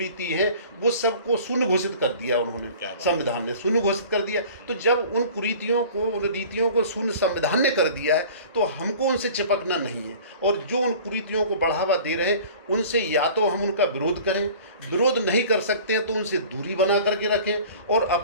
है वो सबको शून्य घोषित कर दिया उन्होंने, संविधान ने शून्य घोषित कर दिया। तो जब उन कुरीतियों को, उन रीतियों को शून्य संविधान ने कर दिया है, तो हमको उनसे चिपकना नहीं है। और जो उन कुरीतियों को बढ़ावा दे रहे हैं, उनसे या तो हम उनका विरोध करें, विरोध नहीं कर सकते हैं तो उनसे दूरी बना करके रखें, और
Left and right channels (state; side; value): inverted; both; correlation -0.44